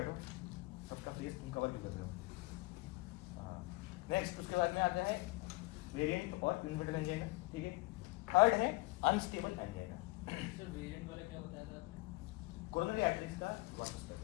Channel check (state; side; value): quieter; right; 23.3 dB